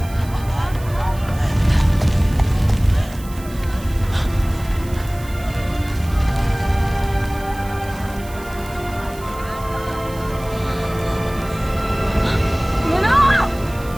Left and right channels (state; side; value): noise; right; hiss, 19 dB below the sound